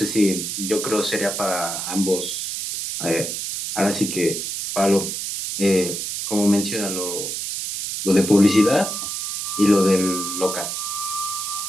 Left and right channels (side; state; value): right; noise; hiss, 4 dB below the sound